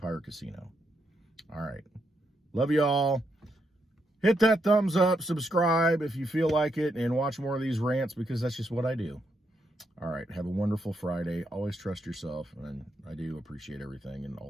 casino. All right. Love you all. Hit that thumbs up, subscribe if you feel like it, and watch more of these rants, because that's just what I do. All right. Have a wonderful Friday. Always trust yourself, and I do appreciate everything and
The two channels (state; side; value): normal; both; correlation 0.80